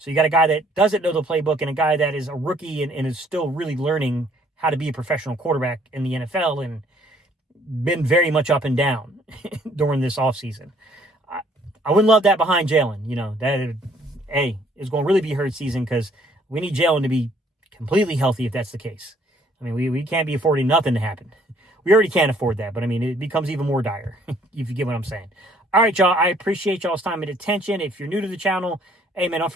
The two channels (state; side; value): normal; both; correlation 0.62